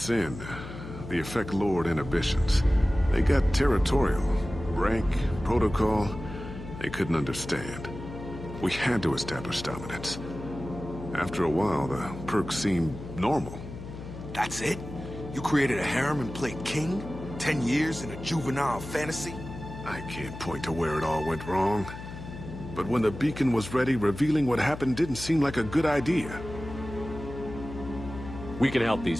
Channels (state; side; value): noise; left; hum, 11 dB below the sound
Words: in, the effect lowered inhibitions. They got territorial. Rank, protocol, they couldn't understand. We had to establish dominance. After a while, the perks seemed normal. That's it? You created a harem and played king? 10 years in a juvenile fantasy? I can't point to where it all went wrong. But when the beacon was ready, revealing what happened didn't seem like a good idea. We can help